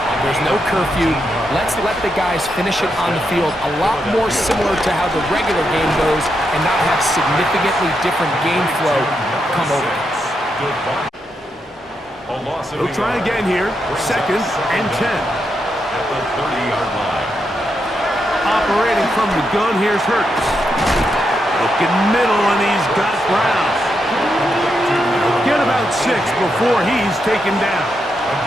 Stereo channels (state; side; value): normal; both; correlation 0.83